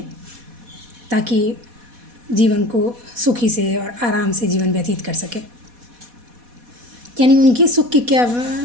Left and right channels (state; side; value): late; left; 4.1 ms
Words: ताकि जीवन को सुखी से और आराम से जीवन व्यतीत कर सके। यानी उनकी सुख की क्या,